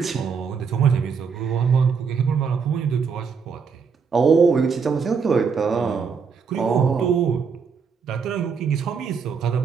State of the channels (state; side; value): quieter; left; 5.9 dB